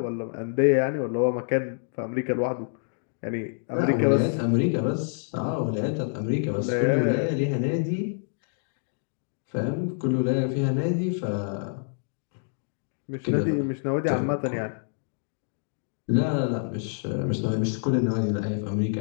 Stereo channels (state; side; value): silent; right; digital silence